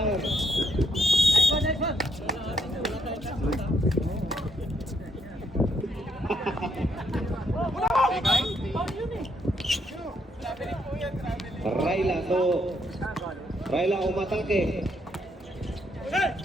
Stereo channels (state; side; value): normal; both; correlation 0.73